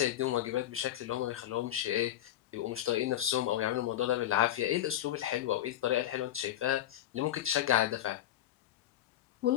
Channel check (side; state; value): right; quieter; 12.4 dB